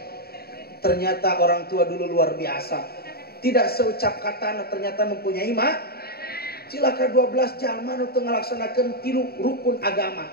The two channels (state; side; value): late; right; 0.45 ms